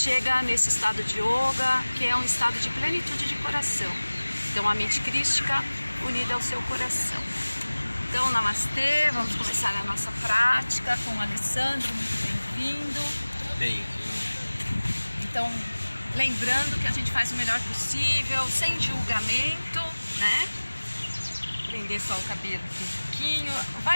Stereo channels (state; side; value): inverted; both; correlation -1.00